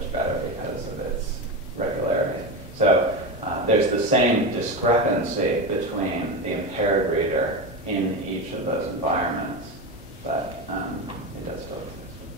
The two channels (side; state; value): both; normal; correlation 0.18